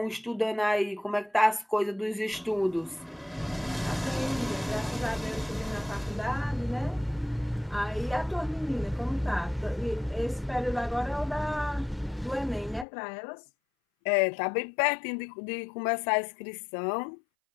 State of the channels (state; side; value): drops out; right; at 12.9 s